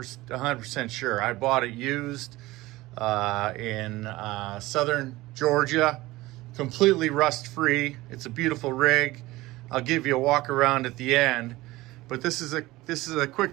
sure. I bought it used in southern Georgia, completely rust-free. It's a beautiful rig. I'll give you a walk around at the end, but this is a quick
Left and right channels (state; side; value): quieter; left; 18.9 dB